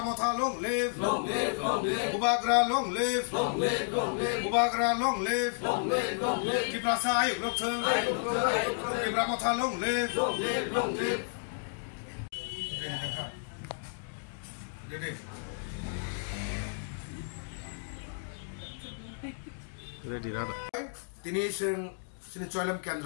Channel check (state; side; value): silent; right; digital silence